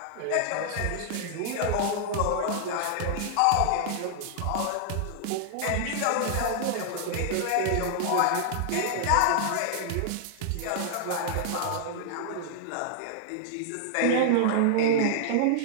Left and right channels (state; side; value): different; both; correlation -0.01